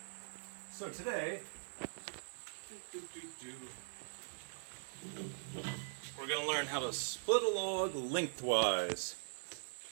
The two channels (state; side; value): silent; left; digital silence